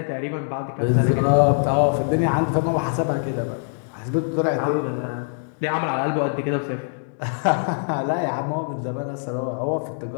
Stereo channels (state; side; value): silent; right; digital silence